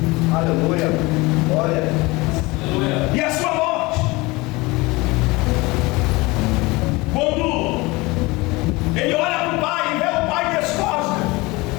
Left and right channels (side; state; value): right; quieter; 23.0 dB